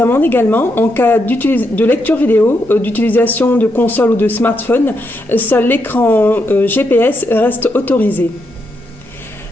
également en cas de lecture vidéo, d'utilisation de console ou de smartphone. Seul l'écran GPS reste autorisé.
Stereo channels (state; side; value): normal; both; correlation 0.81